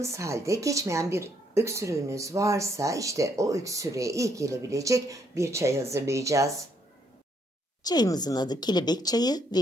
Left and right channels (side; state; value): both; normal; correlation 0.71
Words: halde geçmeyen bir öksürüğünüz varsa işte o öksürüğe iyi gelebilecek bir çay hazırlayacağız. Çayımızın adı kelebek çayı